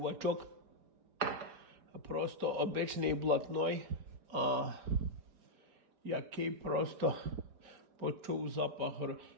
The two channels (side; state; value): left; late; 4.4 ms